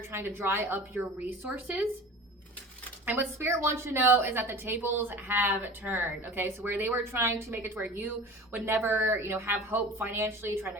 trying to dry up your resources. And what Spirit wants you to know is that the tables have turned, okay? So where they were trying to make it to where you would never, have hope financially, trying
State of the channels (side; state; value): both; normal; correlation 0.38